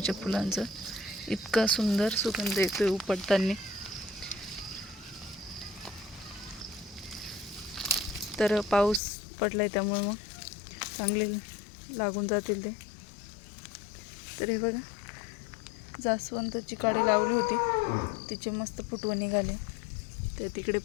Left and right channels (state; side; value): drops out; right; at 9.0 s